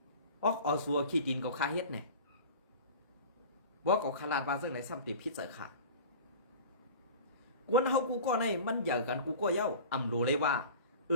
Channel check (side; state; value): both; inverted; correlation -0.38